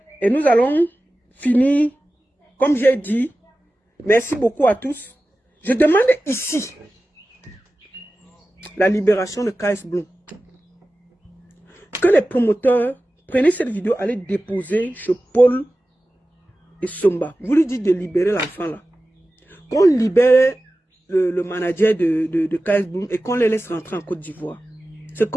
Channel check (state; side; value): normal; both; correlation 0.95